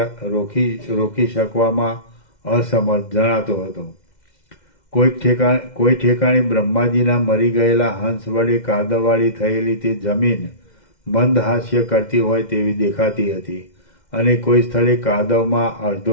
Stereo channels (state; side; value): late; right; 2.1 ms